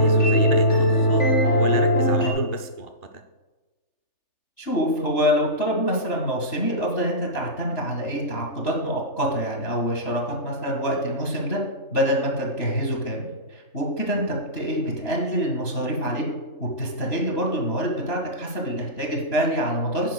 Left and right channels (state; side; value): late; right; 3.4 ms